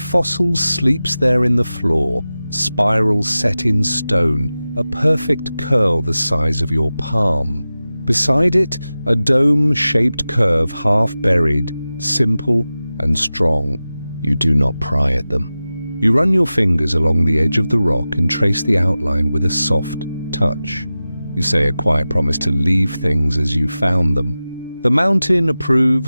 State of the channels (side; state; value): both; inverted; correlation -0.95